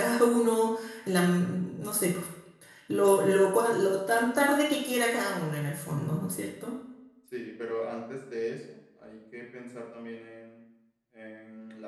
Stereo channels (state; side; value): identical; both; correlation 1.00